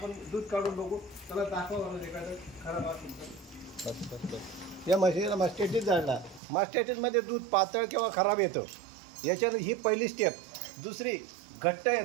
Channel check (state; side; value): drops out; left; at 6.4 s